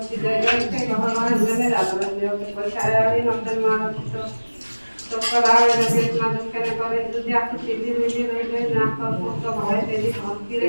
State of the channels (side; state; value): both; inverted; correlation -1.00